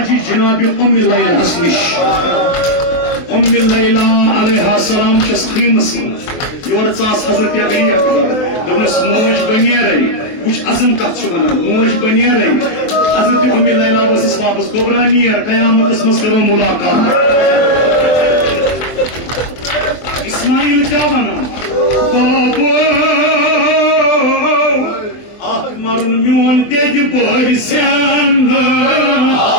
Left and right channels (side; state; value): right; late; 23 ms